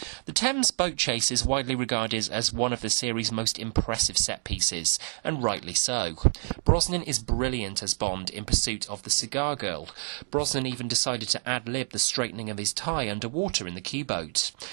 The Thames boat chase is widely regarded as one of the series' most impressive set pieces, and rightly so. Brosnan is brilliant as Bond in pursuit of the cigar girl. Brosnan even decided to ad-lib the straightening of his tie underwater in the Q-boat.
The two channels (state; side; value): silent; left; 59 dB below the other